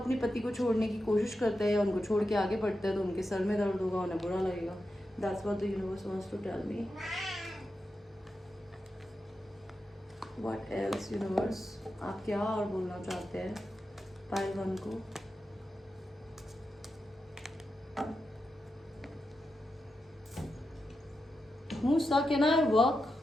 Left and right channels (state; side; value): normal; both; correlation 0.89